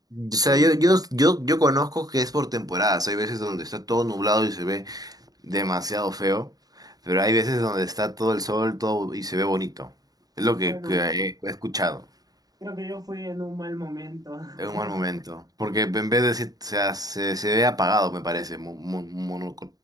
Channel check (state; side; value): late; left; 0.18 ms